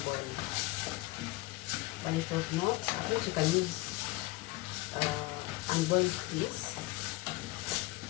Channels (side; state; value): right; quieter; 21.0 dB